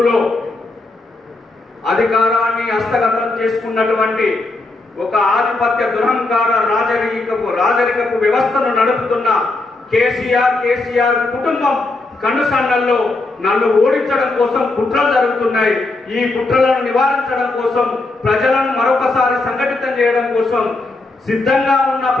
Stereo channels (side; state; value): right; quieter; 3.2 dB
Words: అధికారాన్ని హస్తగతం చేసుకున్నటువంటి ఒక ఆధిపత్య దురహంకార రాజరికపు వ్యవస్థను నడుపుతున్న కేసీఆర్ కుటుంబం కనుసన్నల్లో నన్ను ఓడించడం కోసం కుట్రలు జరుగుతున్నాయి. ఈ కుట్రలను నివారించడం కోసం, ప్రజలను మరొకసారి సంఘటితం చేయడం కోసం సిద్ధంగా ఉన్న